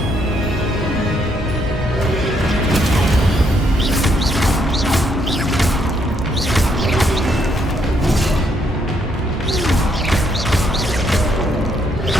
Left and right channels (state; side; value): normal; both; correlation 0.73